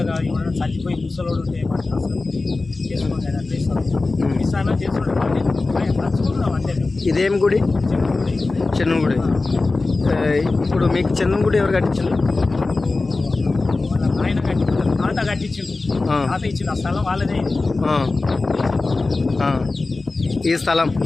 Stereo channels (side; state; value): right; quieter; 3.5 dB